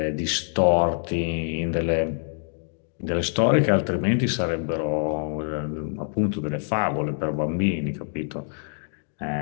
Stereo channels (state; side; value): silent; right; digital silence